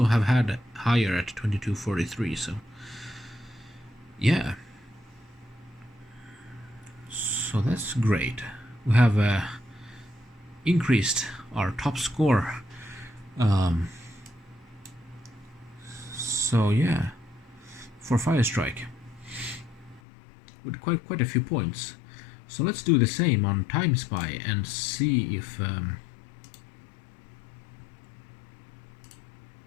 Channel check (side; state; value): right; drops out; at 20.0 s